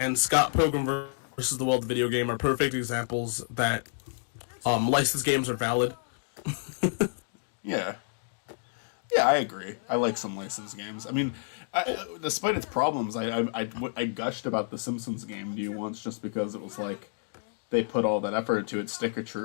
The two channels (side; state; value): right; silent; digital silence